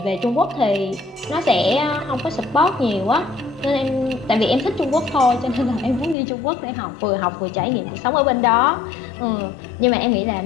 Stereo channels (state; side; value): drops out; right; at 6.2 s